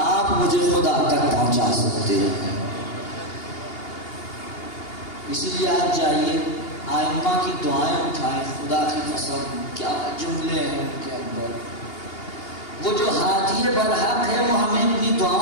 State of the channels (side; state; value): right; late; 2.8 ms